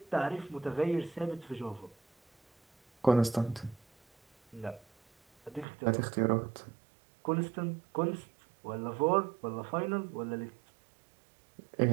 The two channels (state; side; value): drops out; left; at 5.7 s